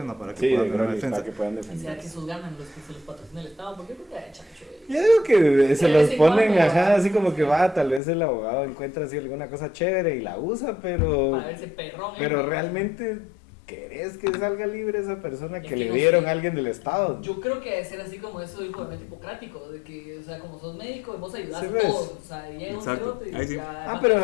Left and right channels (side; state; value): right; drops out; at 8.0 s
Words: para que Sí, puedan de tener una gratis, defensa. para que puedan Y sea defender. que esos ganan los que se los patrocina el Estado, porque yo creo que ha hecho Yo digo que se De los vez en ponen, cuando, ajá, ¿va? así como que va, tal vez el abogado encuentra así alguna cosa chévere y la usa, pero para verse perrón. pero realmente ¿querés que salga libre esa persona Es que que le no dieron sé. a alguien del Estado? Yo creo que debe ser así como eso del juramento hipocrático, de que, o sea, como sos médico, vos ayudás Sí, a ves. todos, o sea, llega un Exacto. cerote y Ahí sí. ya...